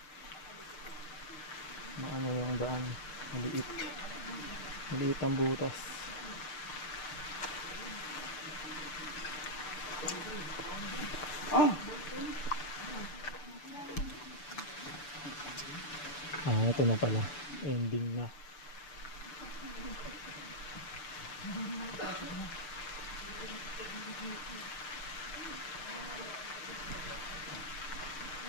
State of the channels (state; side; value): late; right; 6.8 ms